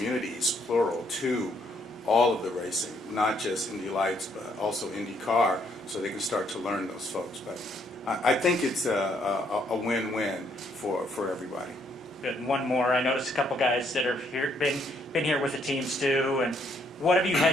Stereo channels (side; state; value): both; normal; correlation 0.70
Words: plural, to all of the racing, not just Indy Lights, but also INDYCAR, so they can start to learn those folks. But I think it's a win-win for everybody. Good. And one more. I noticed a couple guys that are here, been here with the teams too. And what have you